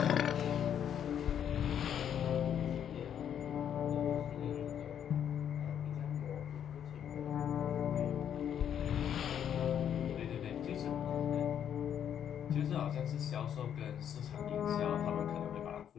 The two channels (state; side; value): quieter; right; 9.2 dB